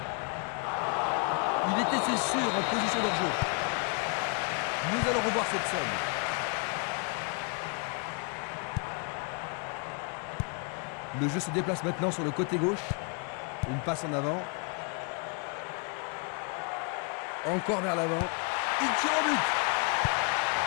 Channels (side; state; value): right; quieter; 36.0 dB